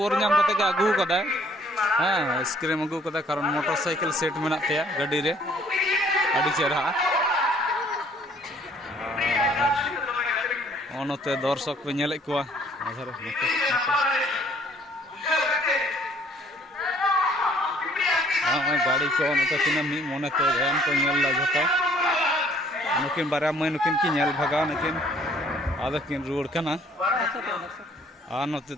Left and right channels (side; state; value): both; normal; correlation 0.60